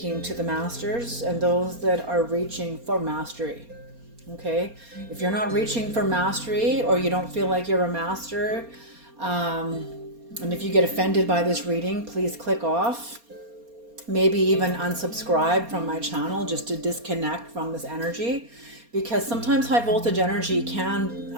to the masters and those that are reaching for mastery. Okay, if you're not reaching for mastery or you don't feel like you're a master, and if you get offended by this reading, please click off. Maybe even unsubscribe from my channel just to disconnect from this energy, because sometimes high voltage energy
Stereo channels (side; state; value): left; late; 4.3 ms